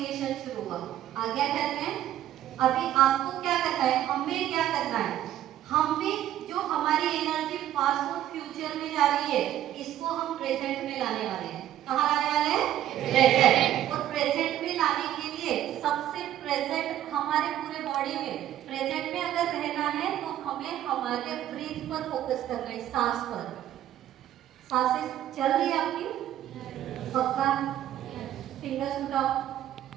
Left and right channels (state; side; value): quieter; left; 12.2 dB